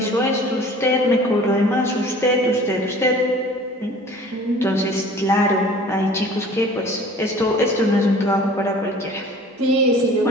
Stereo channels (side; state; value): both; normal; correlation 0.47